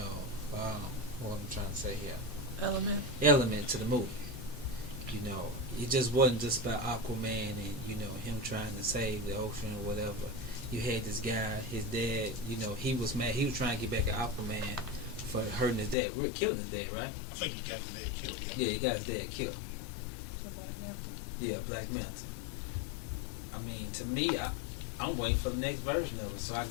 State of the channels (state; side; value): drops out; right; at 16.0 s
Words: what I'm trying to say here, element to the movie. You know, it just wasn't just about Aquaman and, you know, him trying to save the ocean or whatever. You had this guy, his dad, you know, he was mad. He was trying to get back at Aquaman for hurting his dad. We're killing his dad, right? I think he got his dad killed. Yeah, he got his dad killed. So Black Panther. Yeah, Black Manta. I mean, to me, I'm waiting for the next version of it so I can